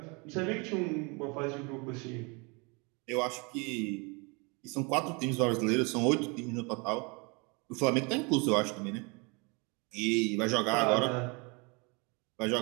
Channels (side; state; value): left; quieter; 30.3 dB